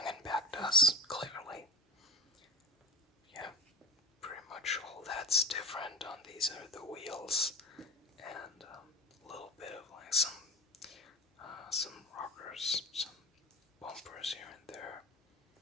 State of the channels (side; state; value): both; normal; correlation 0.31